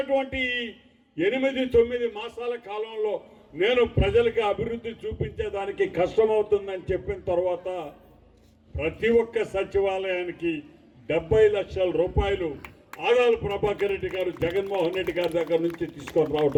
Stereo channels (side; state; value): both; identical; correlation 1.00